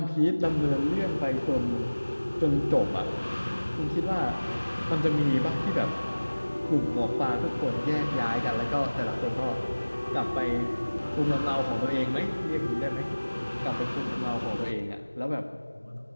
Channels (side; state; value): both; inverted; correlation -1.00